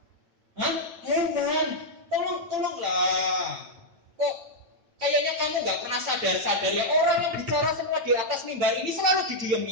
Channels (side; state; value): left; late; 9.0 ms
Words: Hah? Heran. Tolonglah. Kok kayaknya kamu nggak pernah sadar ya, orang yang bicara semua di atas mimbar ini selalu